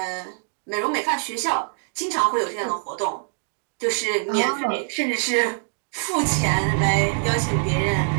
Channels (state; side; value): silent; left; digital silence